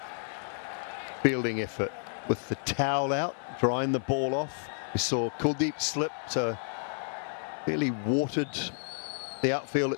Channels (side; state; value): right; silent; 57 dB below the other